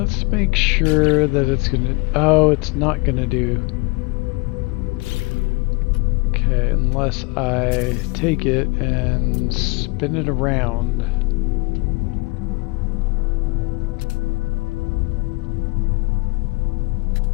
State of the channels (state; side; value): quieter; right; 27.7 dB